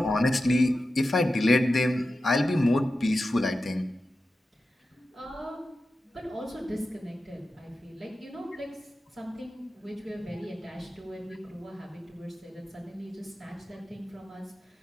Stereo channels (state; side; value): normal; both; correlation 0.92